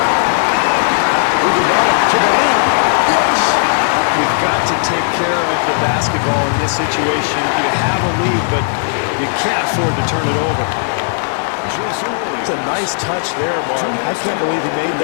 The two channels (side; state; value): right; silent; digital silence